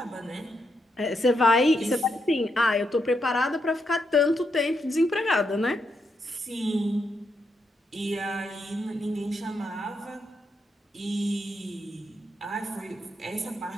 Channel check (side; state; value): both; normal; correlation 0.81